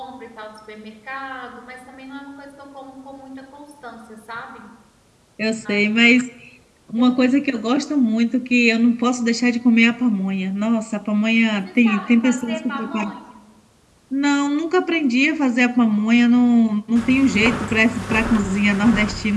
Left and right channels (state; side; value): identical; both; correlation 1.00